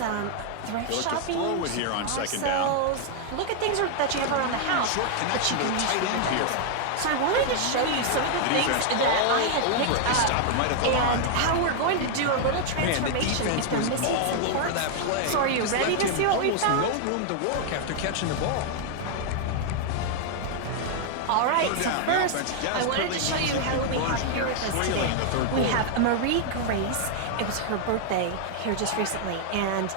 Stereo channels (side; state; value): both; different; correlation 0.00